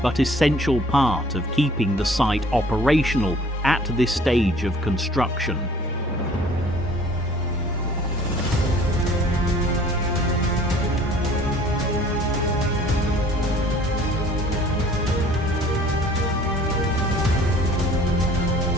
but essential part of keeping the site operational at this stage of construction.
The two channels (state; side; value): normal; both; correlation 0.52